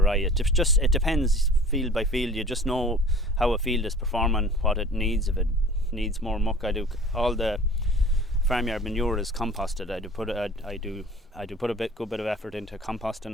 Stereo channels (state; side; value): normal; both; correlation 0.46